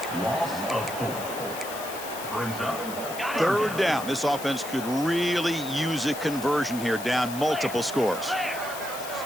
Loss of 4. Brings up. Third down. This offense could really use a conversion here, down multiple scores.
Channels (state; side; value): noise; left; hiss, 11 dB below the sound